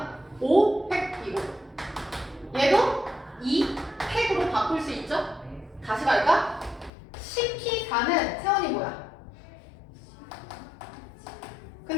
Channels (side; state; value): right; drops out; at 6.9 s